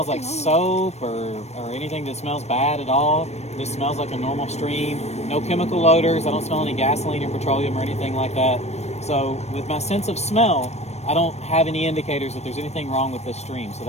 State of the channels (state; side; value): late; right; 0.31 ms